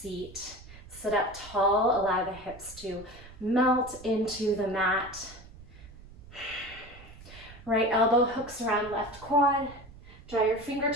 Sit up tall, allow the hips to melt into the mat. Right elbow hooks around left quad. Draw your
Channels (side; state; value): right; noise; rumble, 19 dB below the sound